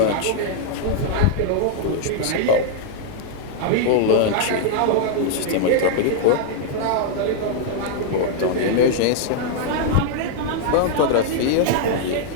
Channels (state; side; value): different; both; correlation -0.01